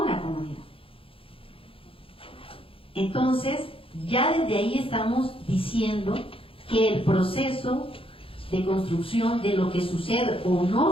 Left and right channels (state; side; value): late; right; 0.27 ms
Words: la comunidad. Entonces, ya desde ahí estamos diciendo que el proceso de construcción de lo que sucede o